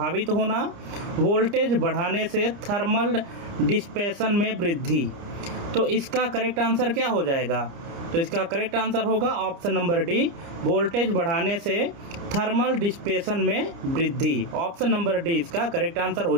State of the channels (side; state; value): left; late; 30 ms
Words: होना, वोल्टेज बढ़ाने से थर्मल डिस्पेशन में वृद्धि। तो इसका करेक्ट आंसर क्या हो जाएगा? तो इसका करेक्ट आंसर होगा ऑप्शन नंबर डी, वोल्टेज बढ़ाने से थर्मल डिस्पेशन में वृद्धि। ऑप्शन नंबर डी इसका करेक्ट आंसर हो